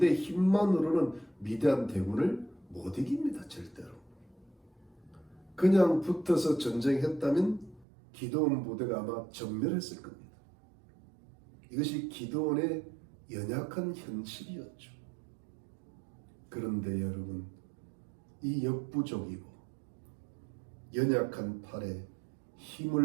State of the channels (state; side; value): drops out; left; at 7.9 s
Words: 힘만으로는 미디안 대군을 못 이깁니다. 절대로. 그냥 붙어서 전쟁했다면 기드온 부대가 아마 전멸했을 겁니다. 이것이 기드온의 연약한 현실이었죠. 그런데 여러분, 이 역부족이고 연약한 팔에